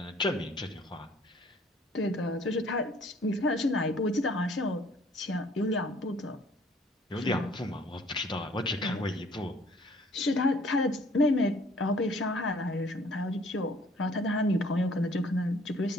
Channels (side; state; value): both; normal; correlation 0.57